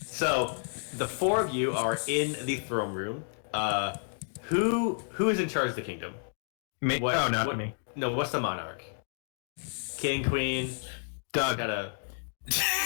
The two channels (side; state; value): right; silent; 57 dB below the other